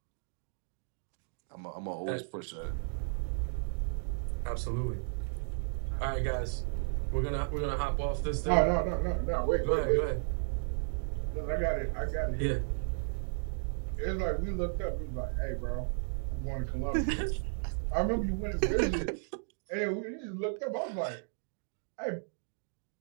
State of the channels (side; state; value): left; silent; digital silence